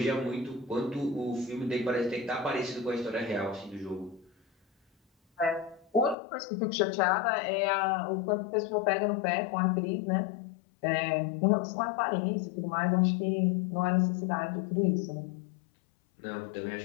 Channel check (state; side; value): drops out; right; at 6.2 s